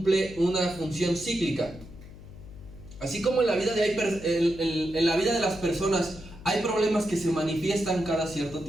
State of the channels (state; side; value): noise; left; hum, 16 dB below the sound